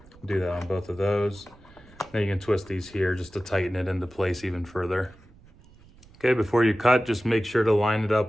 Do that on both of those. Then you can twist these here just to tighten it into place even further. Okay, before you cut, just make sure to line it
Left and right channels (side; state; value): right; noise; rumble, 25 dB below the sound